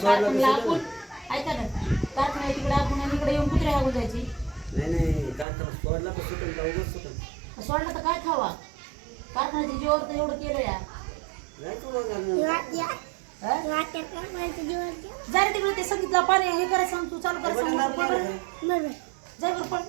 तर कारखान्याला सुद्धा आपण ऐका ना कारखान्या तिकडे आपण आणि इकडे येऊन कुत्रे हागून जायची नाही नाही कारखाना सोडला तर सुटून का उगाच सुटून सोडलं तर काय खावा कारखान्याच्या जीवावर तर एवढं केलं या जायचं बघ घालणं. जरा तिकडे ते संगीतला पाणी हे करायचं सांग तू चालू ते करायचं बटन सांग दाबून बरं. आलं काय? जाय बरं पण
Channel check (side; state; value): left; drops out; at 5.5 s